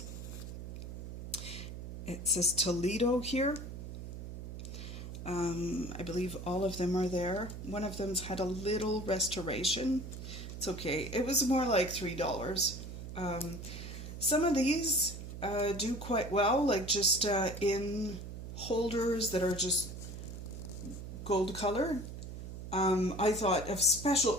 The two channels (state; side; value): noise; right; hum, 9 dB below the sound